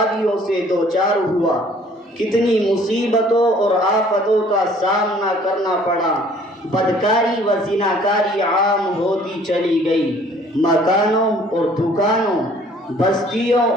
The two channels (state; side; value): normal; both; correlation 0.56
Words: سے دوچار ہوا، کتنی مصیبتوں اور آفتوں کا سامنا کرنا پڑا۔ بدکاری و زناکاری عام ہوتی چلی گئی، مکانوں اور دکانوں، بستیوں